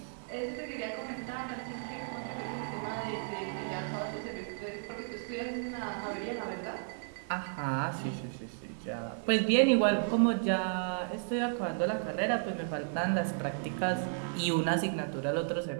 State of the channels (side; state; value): left; silent; 55 dB below the other